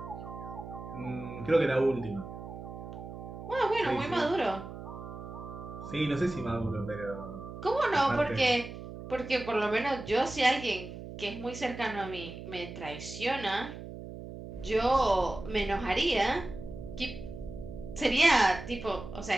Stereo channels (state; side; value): noise; right; hum, 11 dB below the sound